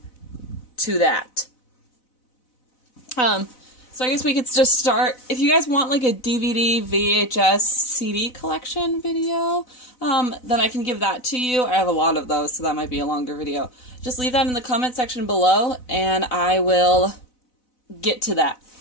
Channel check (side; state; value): right; late; 4.0 ms